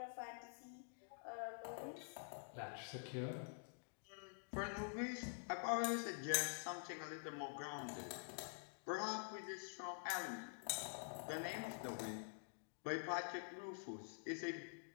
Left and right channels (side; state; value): right; silent; digital silence